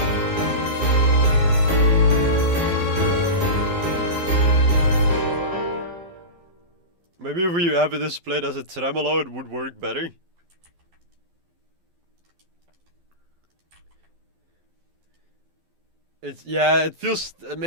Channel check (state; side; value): late; left; 12 ms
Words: Maybe if we have this played as a tremolo, it would work better. Yeah, it feels